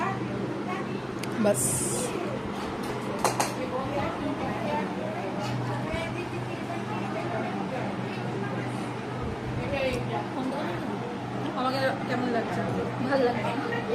বাস। ভালো লাগে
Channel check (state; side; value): identical; both; correlation 1.00